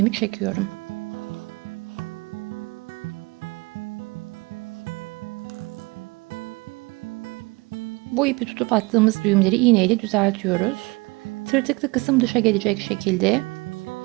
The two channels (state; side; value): quieter; left; 25.5 dB